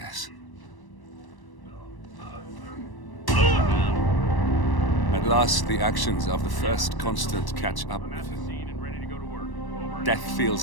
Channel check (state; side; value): late; right; 1.1 ms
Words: At last, the actions of the first constant catch up with him. Death